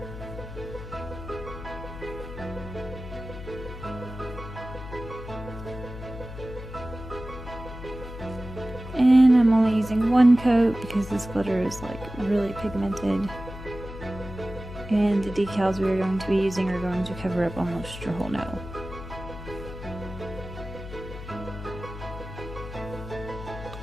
And I'm only using one coat because this glitter is like really pigmented. And the decals we are going to be using are going to cover up almost your whole nail.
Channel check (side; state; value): left; noise; hum, 11 dB below the sound